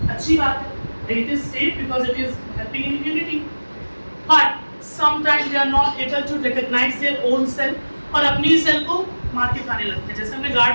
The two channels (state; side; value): inverted; both; correlation -1.00